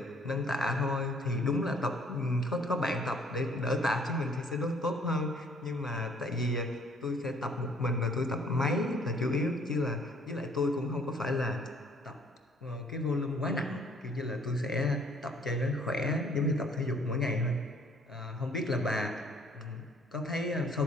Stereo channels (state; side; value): normal; both; correlation 0.60